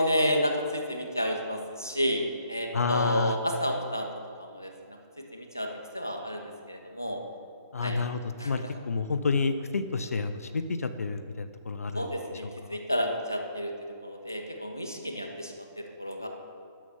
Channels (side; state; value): both; inverted; correlation -0.73